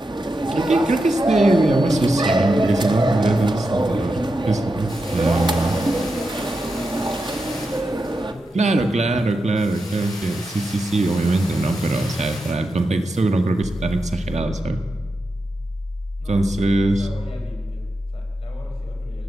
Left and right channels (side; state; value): both; normal; correlation 0.88